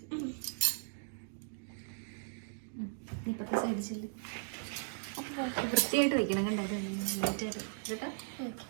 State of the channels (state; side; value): silent; left; digital silence